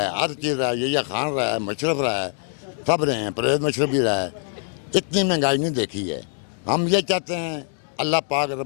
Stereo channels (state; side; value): silent; right; 63 dB below the other